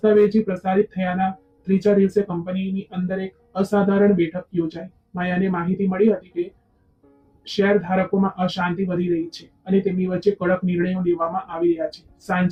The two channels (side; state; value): both; identical; correlation 1.00